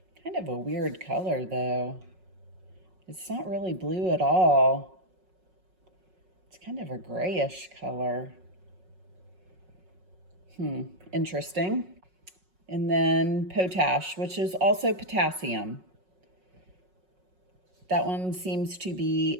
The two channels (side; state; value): left; late; 5.4 ms